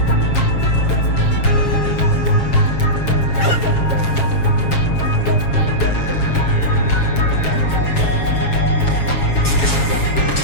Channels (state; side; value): late; right; 7.3 ms